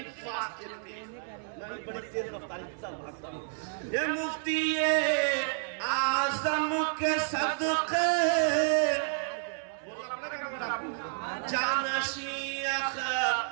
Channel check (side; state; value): left; silent; digital silence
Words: fast. मैं बड़ी तेज रफ्तारी के साथ भागता हूँ। ये मुफ्ती आज़म के सदक़े जानशी